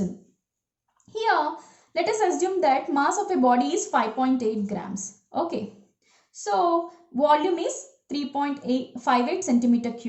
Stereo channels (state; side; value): identical; both; correlation 1.00